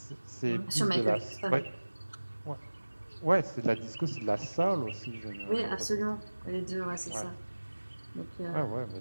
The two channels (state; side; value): inverted; both; correlation -1.00